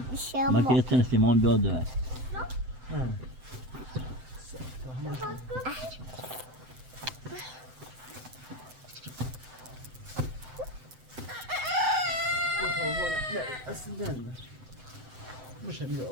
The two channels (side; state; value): left; late; 7.8 ms